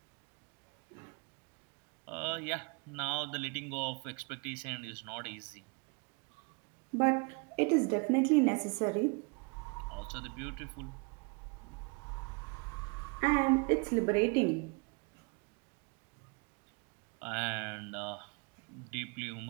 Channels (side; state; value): left; quieter; 33.3 dB